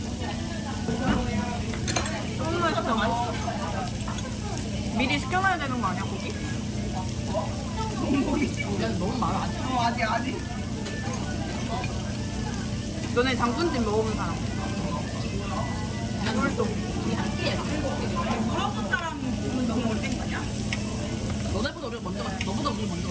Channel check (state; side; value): identical; both; correlation 1.00